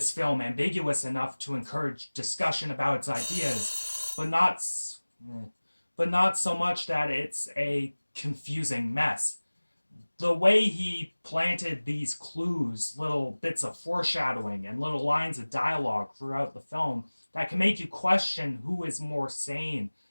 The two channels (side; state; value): both; inverted; correlation -1.00